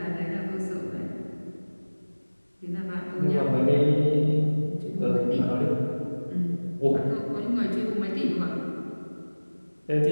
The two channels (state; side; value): inverted; both; correlation -1.00